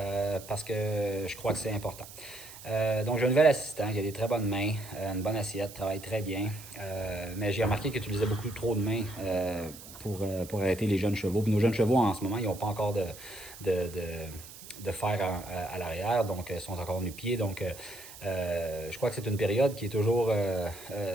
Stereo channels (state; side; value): noise; right; hiss, 16 dB below the sound